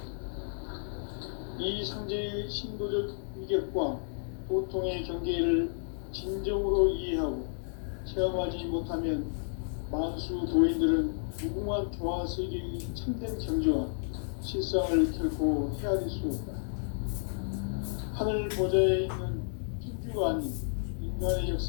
이 상제의 신도적 위격과 도통의 경계를 진정으로 이해하고 체험하지 못하면 만수 도인들은 무궁한 조화 세계의 참된 경지와 실상을 결코 헤아릴 수 없다. 하늘 보좌에 있는 천주가 아닌 인간의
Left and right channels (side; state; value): right; silent; digital silence